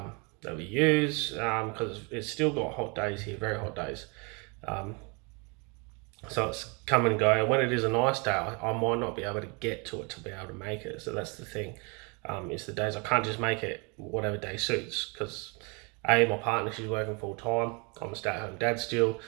we use, because it's still got hot days here, very hot days. So it's come and go. And when it is a nice day, I might not be able to get to it to be able to make it. So that's the thing. It's the days I can't just make it whatever day suits, because my partner, she's working full time. I'm a stay-at-home dad still,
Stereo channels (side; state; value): left; quieter; 32.0 dB